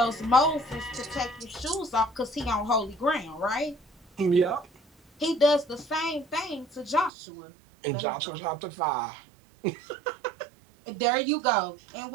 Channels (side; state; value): left; drops out; at 7.1 s